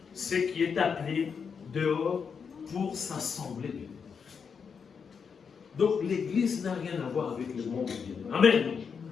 Ce qui est appelé dehors pour s'assembler. Donc l'église n'a rien à voir avec le monde. Amen.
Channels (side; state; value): right; quieter; 6.2 dB